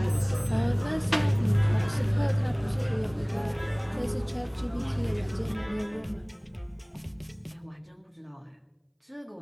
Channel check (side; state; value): both; identical; correlation 1.00